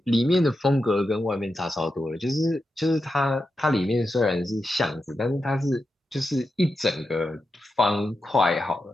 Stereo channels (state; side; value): normal; both; correlation 0.89